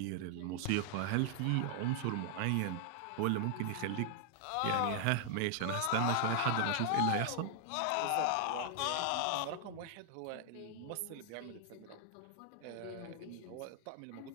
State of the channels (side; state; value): both; different; correlation 0.00